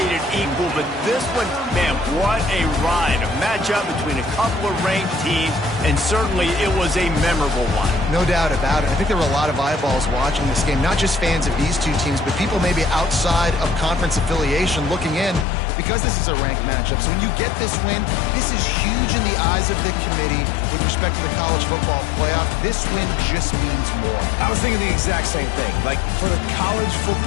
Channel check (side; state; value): right; drops out; at 15.5 s